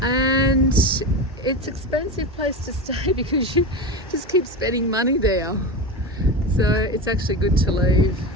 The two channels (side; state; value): both; normal; correlation 0.22